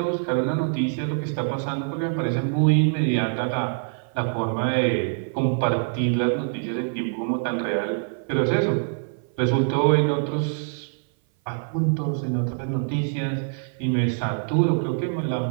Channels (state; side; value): silent; left; 57 dB below the other